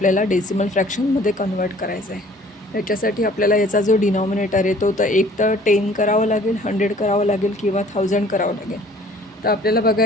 डेसिमल फ्रॅक्शनमध्ये कन्वर्ट करायचं आहे. याच्यासाठी आपल्याला याचा जो डिनॉमिनेटर येतो तर एक तर 10 करावं लागेल, 100 करावं लागेल किंवा 1000 करावं लागेल. तर आपल्याला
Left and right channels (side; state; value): both; normal; correlation 0.54